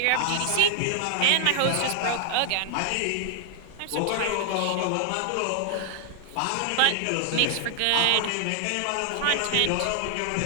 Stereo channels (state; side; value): different; both; correlation -0.01